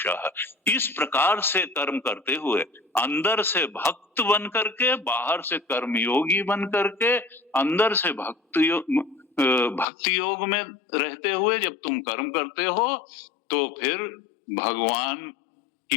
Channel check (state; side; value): drops out; right; at 9.9 s